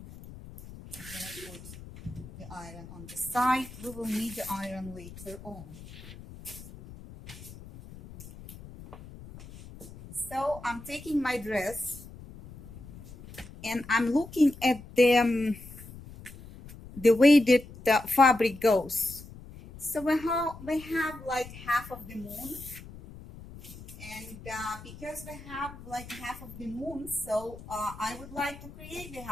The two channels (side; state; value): left; noise; rumble, 16 dB below the sound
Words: I'm gonna put the iron on the side. We will need the iron later on. So I'm taking my dress and I'm looking at the way that the fabric goes. So we have like half of the moon, and because we have like half of the moon, so I would like to create the